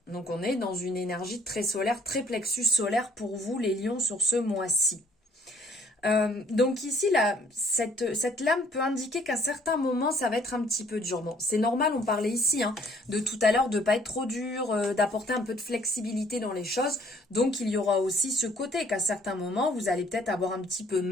Donc on est dans une énergie très solaire, très plexus solaire pour vous, les lions, sur ce mois-ci. Donc ici, là, cette lame peut indiquer qu'à certains moments, ça va être un petit peu dur. Bon, c'est normal, on parlait ici hein, de tout à l'heure de ne pas être trop dur, d'apporter un peu de flexibilité dans les choses. Donc il y aura aussi ce côté qu'à certains moments, vous allez peut-être avoir un petit peu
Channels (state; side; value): normal; both; correlation 0.60